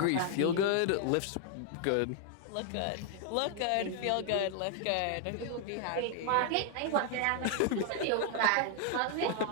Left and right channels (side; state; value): both; different; correlation 0.00